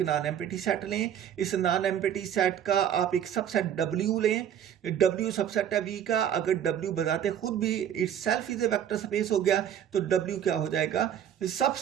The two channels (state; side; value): quieter; left; 9.6 dB